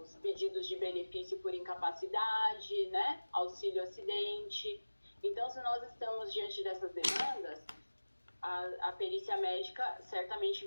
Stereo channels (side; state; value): both; inverted; correlation -1.00